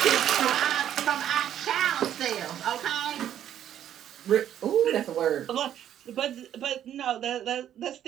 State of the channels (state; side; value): quieter; left; 10.6 dB